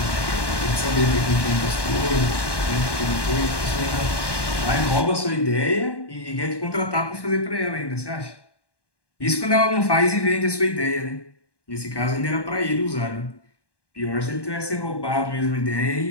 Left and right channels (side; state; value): right; late; 1.1 ms